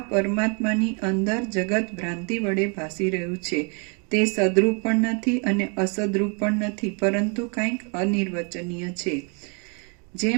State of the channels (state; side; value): quieter; left; 35.9 dB